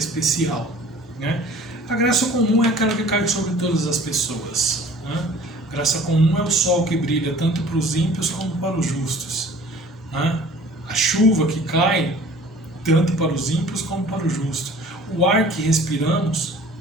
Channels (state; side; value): normal; both; correlation 0.49